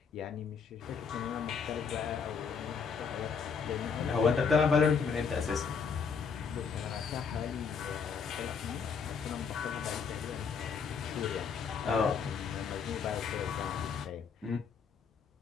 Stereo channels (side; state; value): right; quieter; 6.0 dB